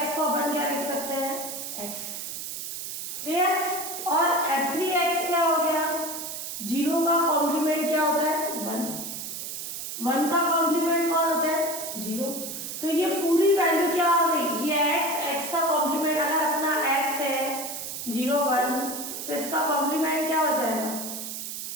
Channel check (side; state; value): right; noise; hiss, 7 dB below the sound